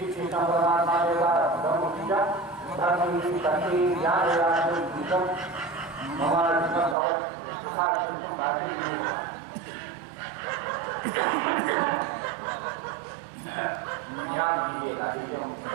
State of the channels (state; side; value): drops out; left; at 7.0 s